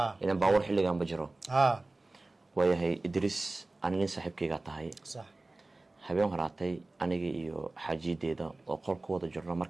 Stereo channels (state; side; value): quieter; left; 3.0 dB